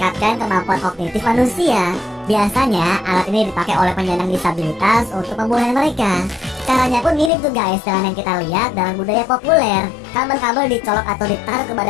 kemampuan kognitif manusia. Biasanya, alat ini dipakai oleh penyandang disabilitas untuk pemulihan mereka. Caranya pun mirip tuh guys dengan yang kita lihat dalam budaya populer. Kabel-kabel dicolok atau ditaruh ke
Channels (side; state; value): right; drops out; at 7.3 s